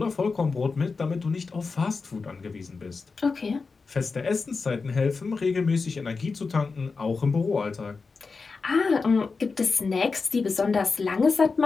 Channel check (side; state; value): right; quieter; 4.5 dB